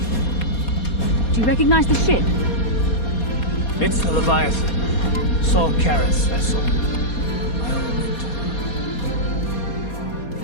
Do you recognize the ship? It's the Leviathan. Saul Karras' vessel.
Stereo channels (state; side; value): late; right; 4.2 ms